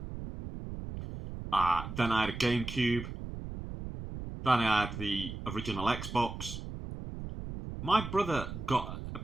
then I had a GameCube, then I had the original Xbox. My brother got a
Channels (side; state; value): right; noise; rumble, 8 dB below the sound